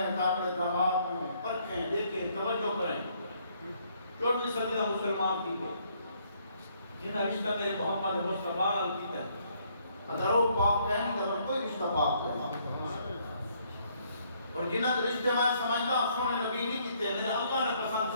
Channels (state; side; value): inverted; both; correlation -0.68